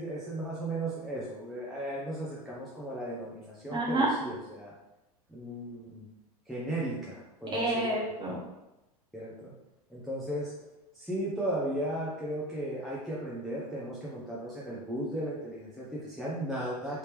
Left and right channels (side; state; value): both; normal; correlation 0.38